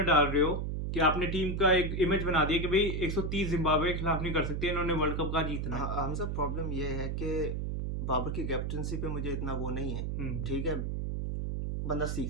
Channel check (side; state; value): right; noise; hum, 2 dB below the sound